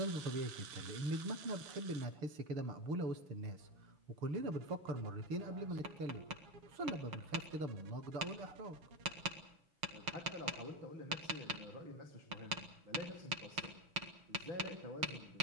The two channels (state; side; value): late; left; 6.6 ms